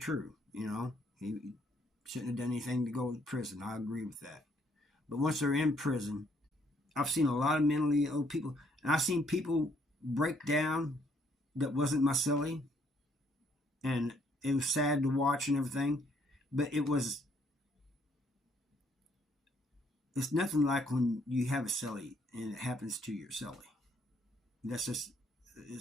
He shouldn't have done anything to go to prison. I agree with that. But once they're in prison, I've seen a lot of mentally ill people, and I've seen people break down that wasn't my celly, and it was sad to watch and everything, but it's nothing like when you have a celly and it happens to your celly.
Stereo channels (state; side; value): normal; both; correlation 0.67